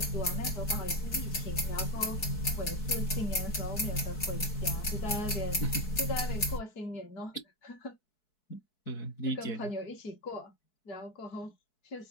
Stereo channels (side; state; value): right; late; 4.7 ms